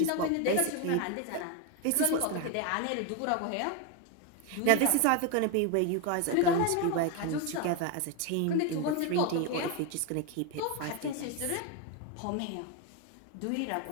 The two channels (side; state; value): both; different; correlation 0.02